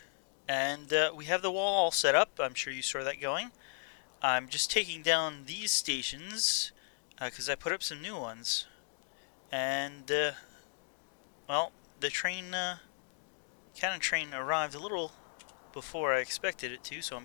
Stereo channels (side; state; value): right; silent; 54 dB below the other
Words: And we have the wall all set up. I'm sure you saw that going. I'm just taking down these stations because I put up some new ones. And, well, the cannon train arrived a little before I expected it to, so I'm